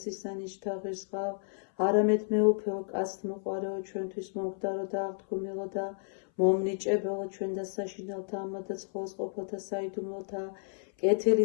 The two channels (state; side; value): silent; right; 56 dB below the other